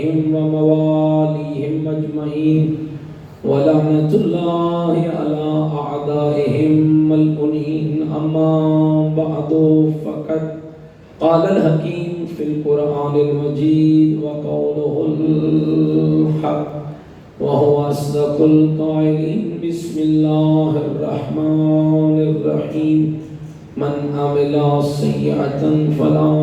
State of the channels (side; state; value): both; identical; correlation 1.00